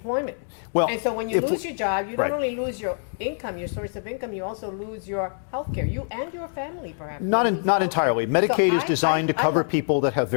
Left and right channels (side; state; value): right; silent; digital silence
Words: Well, and so when you lose your job, you don't only lose your income, your source of income, you also lose your health care. You and your family, perhaps. Not entirely. Medicaid is designed to cover people that have